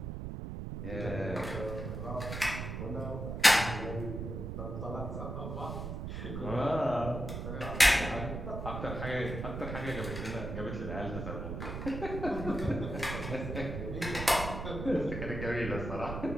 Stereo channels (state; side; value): noise; right; rumble, 5 dB below the sound